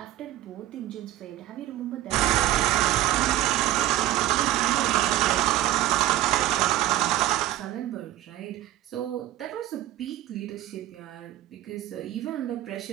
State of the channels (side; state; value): left; quieter; 14.2 dB